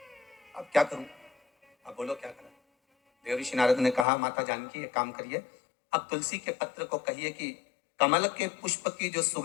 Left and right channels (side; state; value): right; drops out; at 4.0 s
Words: अब क्या करूं, अब बोलो क्या करूं। देव ऋषि नारद ने कहा, माता जानकी एक काम करिए, अब तुलसी के पत्र को कहिए कि कमल के पुष्प की जो